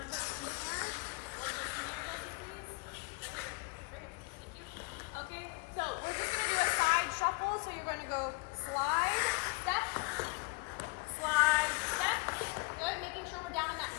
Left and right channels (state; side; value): quieter; right; 28.8 dB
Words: person there, one person there, Jesse, please. Right here. Thank you. Okay, so we're just going to do a side shuffle. So you're going to go slide, step, good, making sure we're down in that